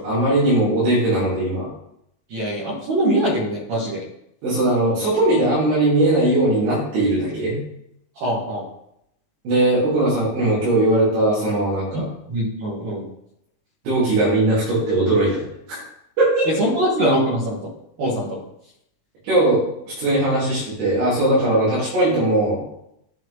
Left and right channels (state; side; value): late; left; 19 ms